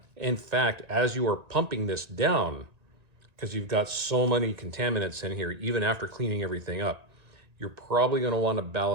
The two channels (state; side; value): late; left; 1.9 ms